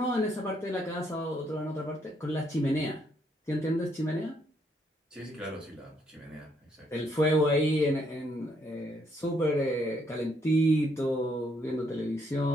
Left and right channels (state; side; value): normal; both; correlation 0.72